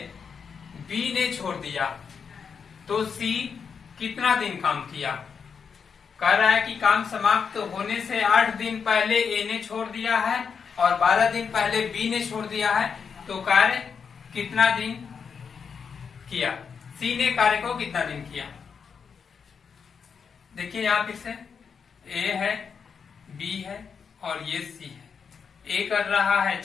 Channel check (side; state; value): right; quieter; 6.3 dB